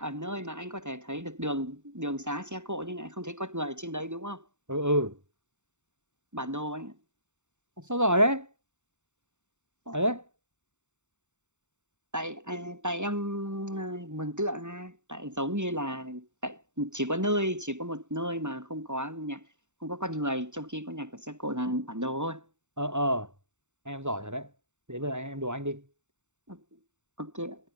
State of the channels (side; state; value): left; late; 0.84 ms